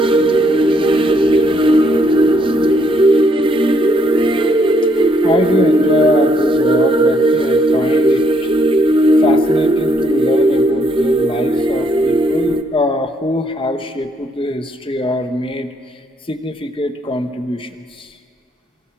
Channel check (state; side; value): normal; both; correlation 0.70